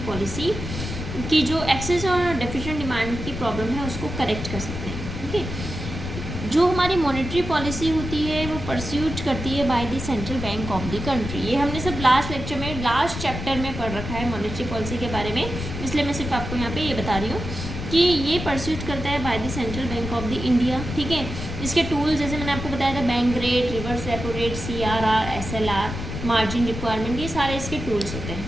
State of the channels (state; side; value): noise; left; rumble, 7 dB below the sound